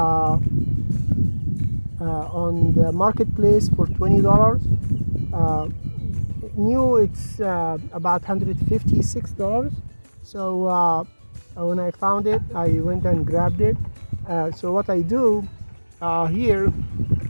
on the marketplace for $20. New it's about $156. So when I found it, I went and grabbed it. So what I do here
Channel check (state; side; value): inverted; both; correlation -1.00